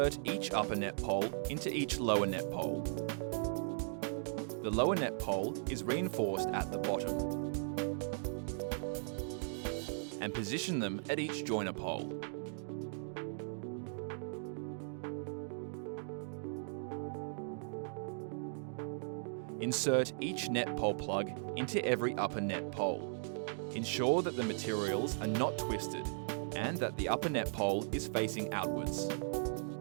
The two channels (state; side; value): silent; left; digital silence